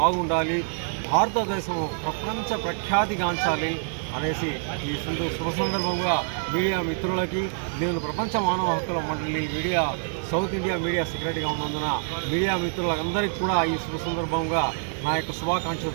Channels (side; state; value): left; silent; digital silence